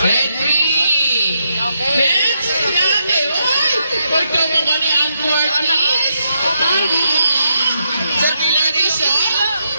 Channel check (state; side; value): inverted; both; correlation -0.80